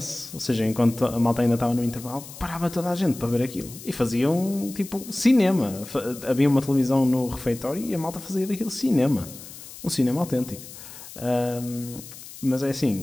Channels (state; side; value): noise; left; hiss, 15 dB below the sound